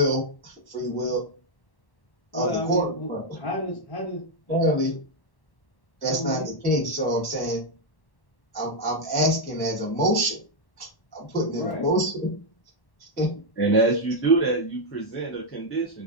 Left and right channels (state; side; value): late; right; 1.1 ms